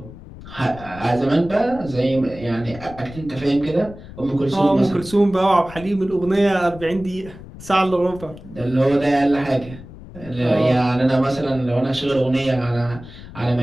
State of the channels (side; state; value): left; noise; rumble, 16 dB below the sound